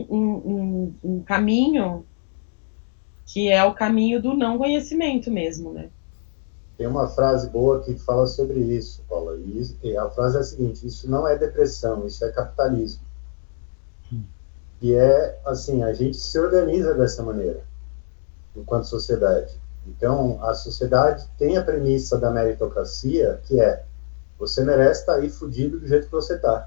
caminho que é o caminho do não conhecimento mesmo, né? tem uma frase boa que fala sobre isso, Paula. E a frase é a seguinte: isso não é depressão, isso é capitalismo. E é assim, a gente se organiza dessa maneira, enquanto sociedade. Então, a sociedade tem a premissa da meritocracia, que é: você merece estar aí fudido do jeito que você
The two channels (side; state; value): right; silent; digital silence